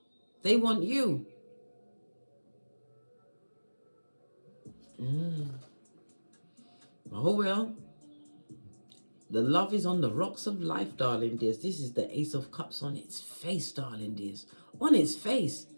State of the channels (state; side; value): inverted; both; correlation -1.00